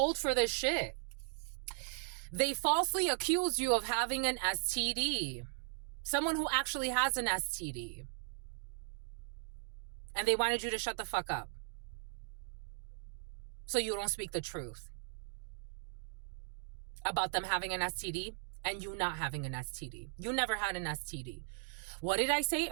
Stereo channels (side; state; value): left; silent; 53 dB below the other